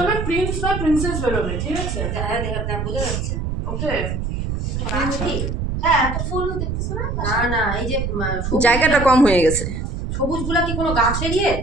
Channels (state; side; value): noise; right; rumble, 3 dB below the sound